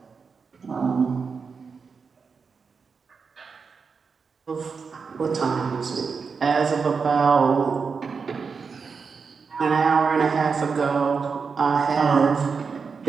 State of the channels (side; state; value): left; quieter; 5.3 dB